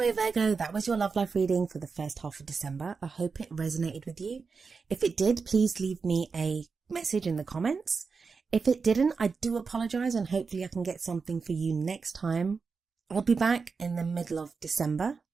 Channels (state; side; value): quieter; left; 5.0 dB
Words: Virgo, that was your love life reading for the first half of December. I hope it resonated with you. If it did, please leave me a message in the comments. If it didn't, I do apologise, and hopefully I can get something for you next time. I'll be back in the middle of December.